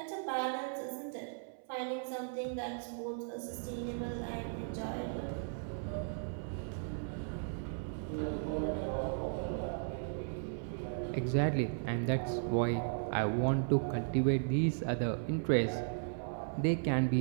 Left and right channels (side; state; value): left; silent; 54 dB below the other